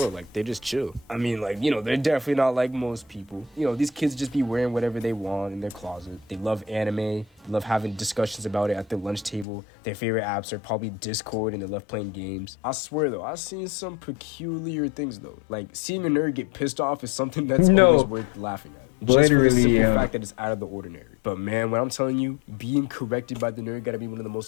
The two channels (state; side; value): drops out; right; at 9.5 s